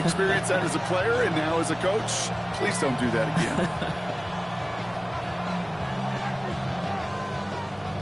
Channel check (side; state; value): right; noise; rumble, 22 dB below the sound